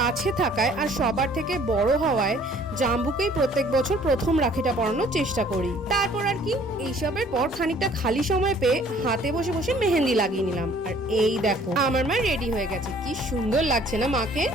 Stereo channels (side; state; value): both; normal; correlation 0.56